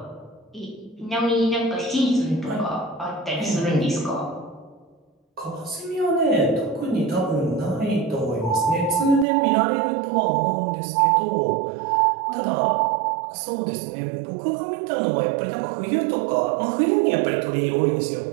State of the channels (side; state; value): left; drops out; at 9.2 s